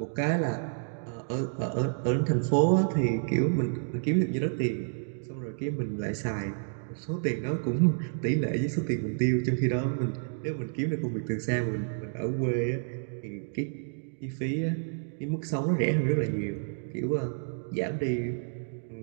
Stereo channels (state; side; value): silent; left; digital silence